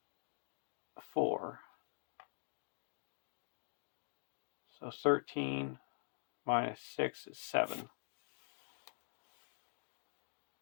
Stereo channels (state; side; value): silent; right; digital silence